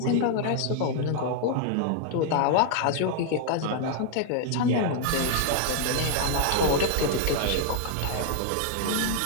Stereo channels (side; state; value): both; different; correlation 0.00